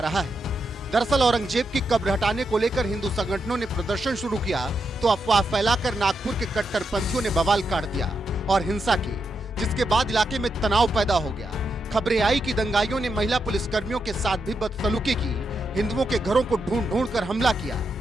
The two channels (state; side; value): normal; both; correlation 0.84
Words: है। दरअसल औरंगजेब की कब्र हटाने को लेकर हिंदू संगठनों ने प्रदर्शन शुरू किया तो अफवाह फैलाकर नागपुर के कट्टरपंथियों ने बवाल काट दिया और हिंसा की, जिसके बाद इलाके में तनाव पैदा हो गया। खबरें आई कि दंगाइयों ने महिला पुलिसकर्मियों के साथ भी बदसलूकी की, हिंदुओं के घरों को ढूंढ ढूंढ कर हमला किया।